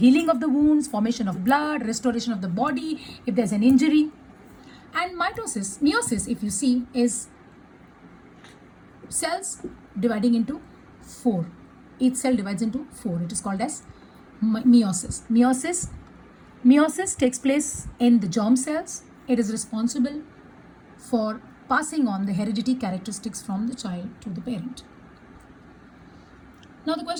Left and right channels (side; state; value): both; identical; correlation 1.00